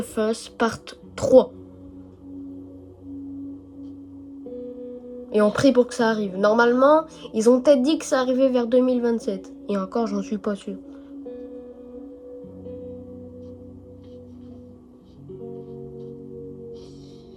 Us Part 3. Et on prie pour que ça arrive. Normalement, ils ont peut-être dit que ça arrivait vers 2027. Et encore, j'en suis pas sûr.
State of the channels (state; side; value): identical; both; correlation 1.00